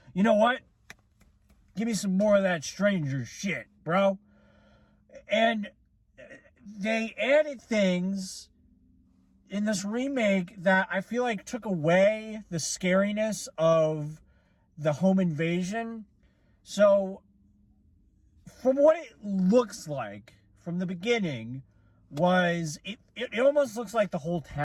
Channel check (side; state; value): both; identical; correlation 1.00